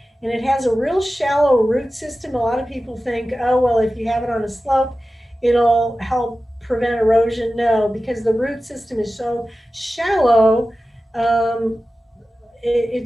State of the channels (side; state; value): both; normal; correlation 0.94